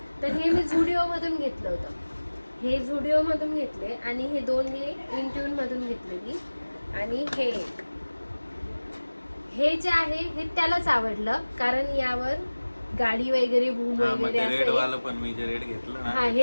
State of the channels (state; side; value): inverted; both; correlation -1.00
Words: तर हे मी झुडिओ मधून घेतलं होतं. हे झुडिओ मधून घेतले आणि हे 2 हे इंट्यून मधून घेतलेली आणि हे एक. हे जे आहे हे त्यालाच आवडलं कारण यावर गाडी वगैरे भूम वगैरे रेड असे. वाला पण मी जे रेड घेतलं ना हा